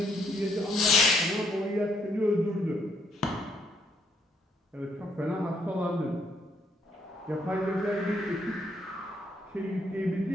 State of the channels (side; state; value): both; normal; correlation 0.71